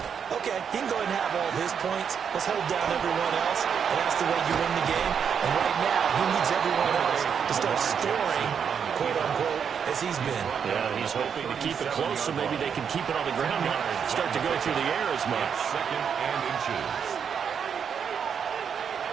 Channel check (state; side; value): quieter; left; 7.3 dB